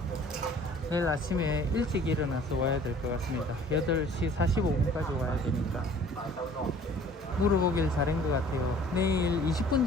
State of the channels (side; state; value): both; normal; correlation 0.51